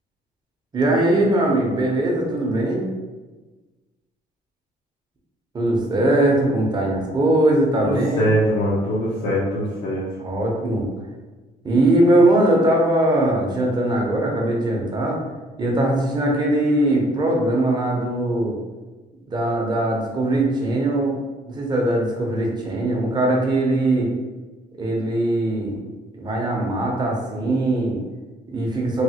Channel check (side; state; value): both; normal; correlation 0.63